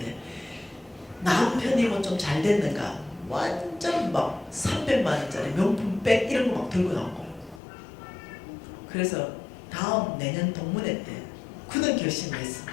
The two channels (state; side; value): drops out; right; at 7.6 s